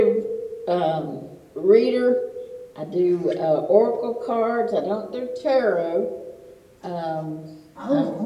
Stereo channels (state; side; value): identical; both; correlation 1.00